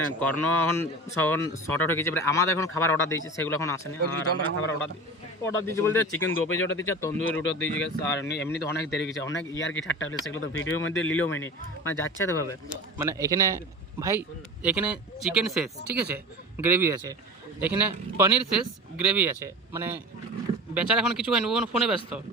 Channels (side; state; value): both; normal; correlation 0.33